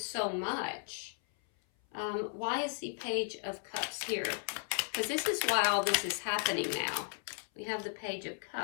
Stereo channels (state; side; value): silent; right; 54 dB below the other